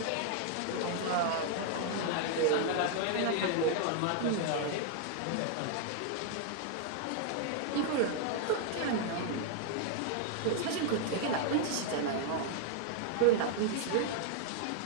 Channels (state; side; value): different; both; correlation 0.00